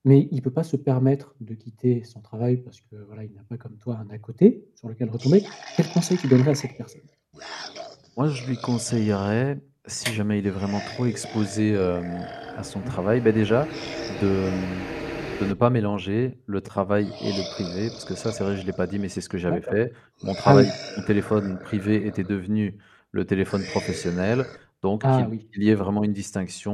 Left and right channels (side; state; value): both; identical; correlation 1.00